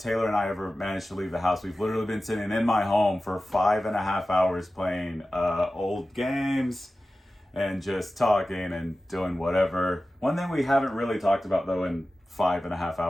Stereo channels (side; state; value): both; normal; correlation 0.95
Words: and I ever manage to leave the house, we've literally been sitting in my home for 5.5 hours playing old games and just talking and doing whatever. One thing we haven't really talked about, though, in 5.5